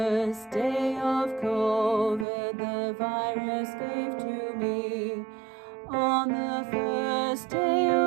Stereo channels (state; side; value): drops out; left; at 2.2 s